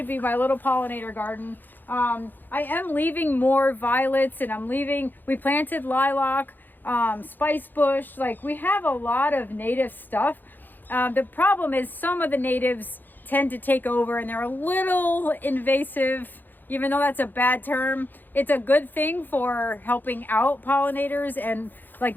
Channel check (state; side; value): late; right; 0.089 ms